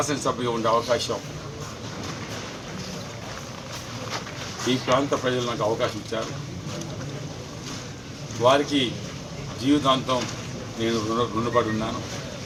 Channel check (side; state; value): both; identical; correlation 1.00